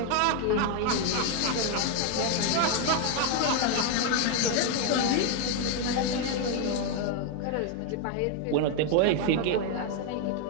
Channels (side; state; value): both; different; correlation 0.01